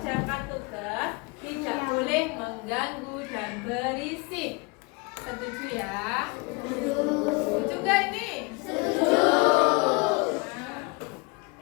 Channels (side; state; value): right; quieter; 28.4 dB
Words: tugas, tidak boleh mengganggu dan berisik. Setuju ya? Setuju gak ini? Setuju.